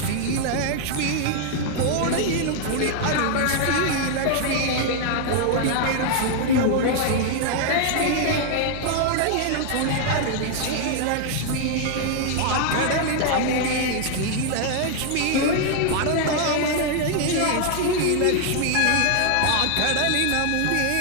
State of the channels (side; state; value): both; different; correlation 0.00